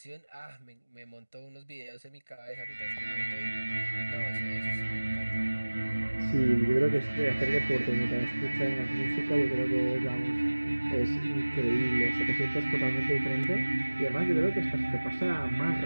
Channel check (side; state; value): both; inverted; correlation -1.00